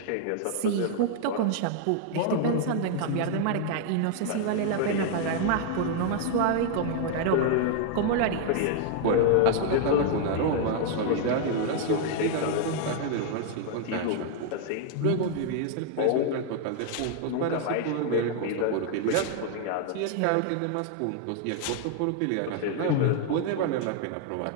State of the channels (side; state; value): both; different; correlation 0.00